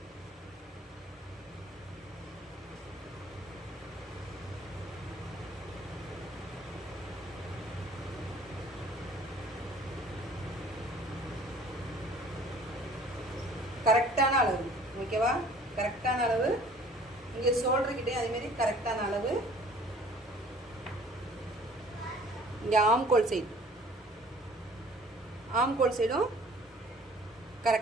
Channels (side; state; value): both; normal; correlation 0.52